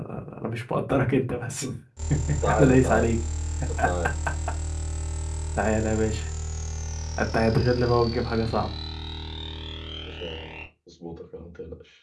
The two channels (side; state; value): both; identical; correlation 1.00